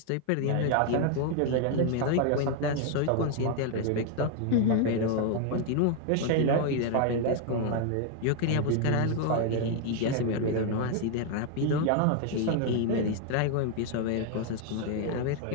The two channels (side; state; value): both; different; correlation 0.00